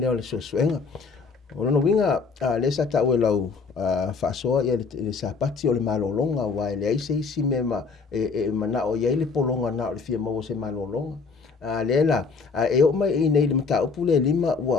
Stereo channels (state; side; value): quieter; right; 4.8 dB